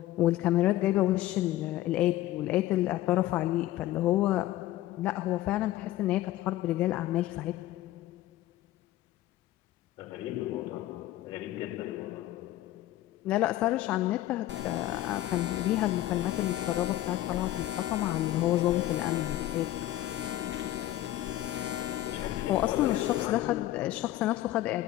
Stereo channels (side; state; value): right; quieter; 14.9 dB